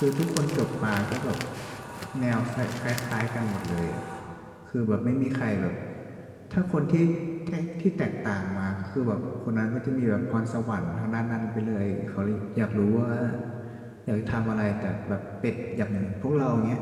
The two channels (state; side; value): identical; both; correlation 1.00